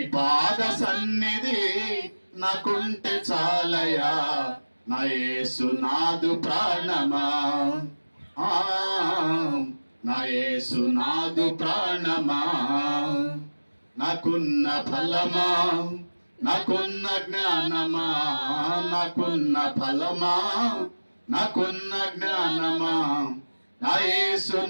పాద సన్నిధి నాకుంటే చాలయా, నా యేసు నాదు ప్రాణమా. నా యేసు నాదు ప్రాణమా. నాకున్న ఫలమా, నాకున్న జ్ఞానమా, నాకున్న ఫలమా, నాకున్న జ్ఞానమా, నా యేసు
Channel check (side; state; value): both; inverted; correlation -1.00